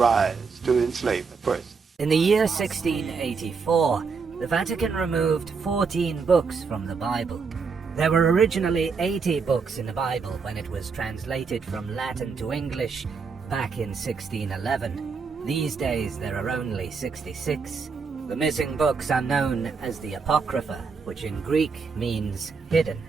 to enslave the person. In the year 1684, the Vatican removed 14 books from the Bible. There were originally 80 books in the Bible when it was translated from Latin to English back in 1611. These days there are only 66. The missing books are known as the Apocrypha, which in Greek means hidden.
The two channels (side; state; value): left; quieter; 5.2 dB